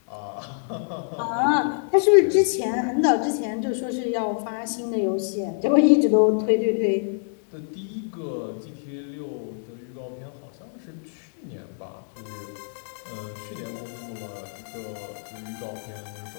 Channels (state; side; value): silent; right; digital silence